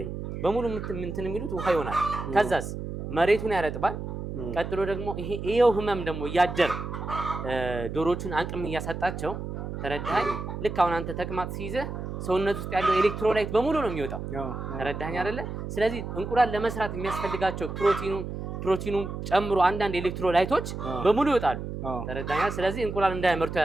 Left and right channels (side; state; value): right; noise; hum, 6 dB below the sound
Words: በሙሉ እንትን የሚሉት ውሃ ይሆናል። ከዛስ መሬቱን ያረጥባል። ቀጥሎ ደግሞ ይሄው ህመም ደግሞ እያደር ዶሮቹን አቅም እያሳጣቸው ተረዳኝ። ልክ አሁን አንተ ተቅማጥ ሲይዝህ ሰውነት ውስጥ ያለው ኤሌክትሮላይት በሙሉ ነው የሚወጣው። ተረዳኝ አይደለ? ስለዚህ እንቁላል ለመስራት የሚያስፈልጋቸው ፕሮቲኑ ጨምሮ አንዳንድ ኤሌክትሮላይቶች በሙሉ ይወጣሉ። ተረዳኛ? ስለዚህ እንቁላል እንዳያመርቱ